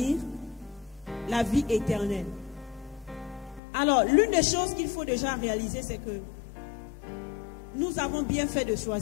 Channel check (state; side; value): drops out; right; at 3.6 s